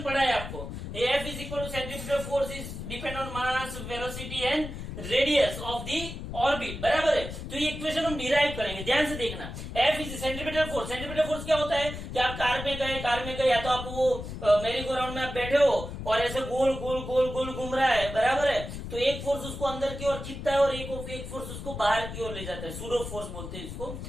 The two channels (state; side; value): noise; left; rumble, 8 dB below the sound